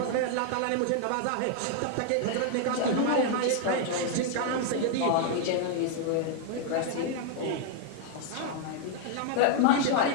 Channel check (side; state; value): both; different; correlation 0.00